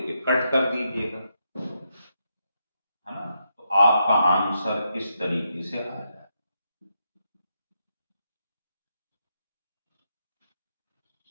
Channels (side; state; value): both; inverted; correlation -0.81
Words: कट कर दीजिएगा, है ना? तो आपका आंसर इस तरीके से आ जाए।